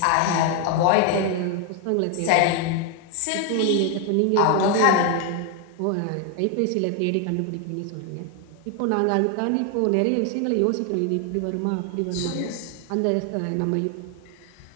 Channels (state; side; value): different; both; correlation 0.01